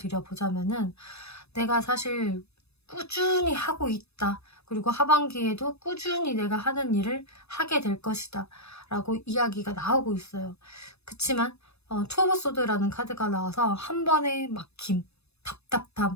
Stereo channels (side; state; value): right; late; 0.79 ms